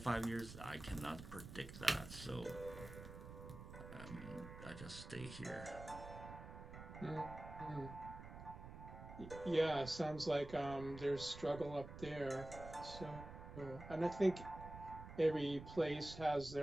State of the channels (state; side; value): noise; right; rumble, 12 dB below the sound